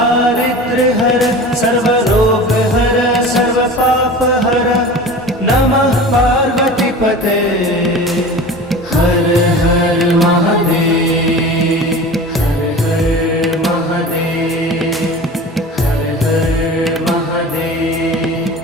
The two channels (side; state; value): both; normal; correlation 0.36